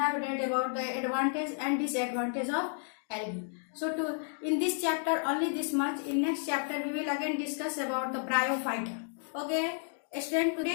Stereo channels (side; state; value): right; silent; 56 dB below the other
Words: read about the advantage and disadvantage of algae. So in this chapter only this much. In next chapter we will again discuss about the bryophyte. Okay student,